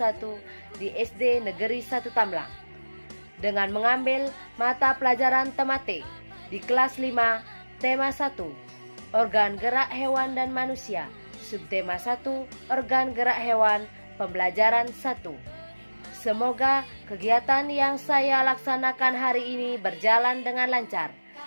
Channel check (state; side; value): inverted; both; correlation -1.00